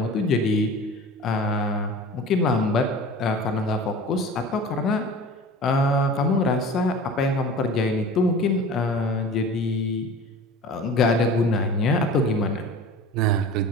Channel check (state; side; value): normal; both; correlation 0.38